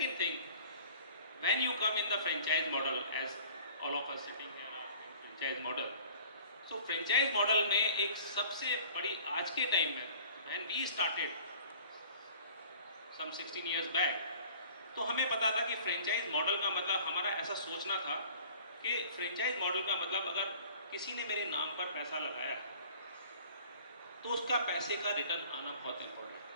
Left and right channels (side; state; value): both; inverted; correlation -0.48